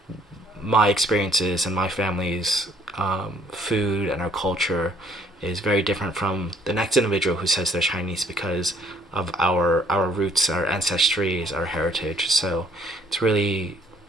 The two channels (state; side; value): normal; both; correlation 0.61